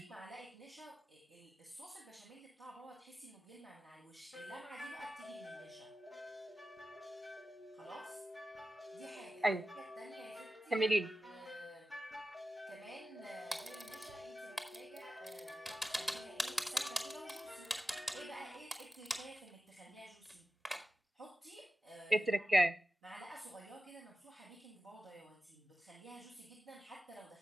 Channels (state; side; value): normal; both; correlation 0.93